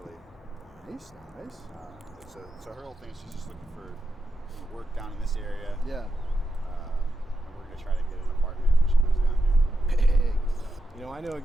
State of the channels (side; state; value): both; normal; correlation 0.86